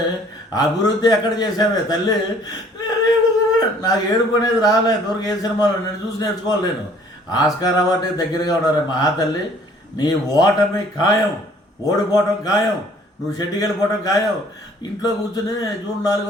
అభివృద్ధి ఎక్కడ చేసావే తల్లి? నాకు ఏడుపు అనేది రాలే దూరకు ఏ సినిమాలో నేను చూసి నేర్చుకోవాలి. నేను ఆస్కార్ అవార్డు దగ్గరగా ఉన్నారు మహాతల్లి. నీ ఓటమి ఖాయం, ఓడిపోవటం ఖాయం, నువ్వు షెడ్డికి వెళ్ళిపోవటం ఖాయం. ఇంట్లో కూర్చుని జూన్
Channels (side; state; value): both; normal; correlation 0.56